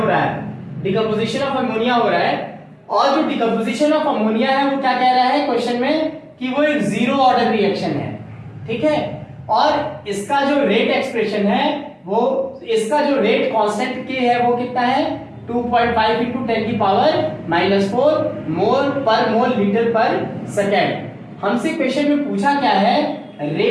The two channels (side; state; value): both; identical; correlation 1.00